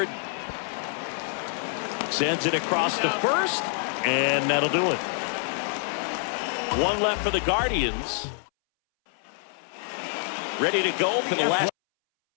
Sends it across to first, and that'll do it. One left for the Guardians. ready to go for the last.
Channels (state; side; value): silent; right; 60 dB below the other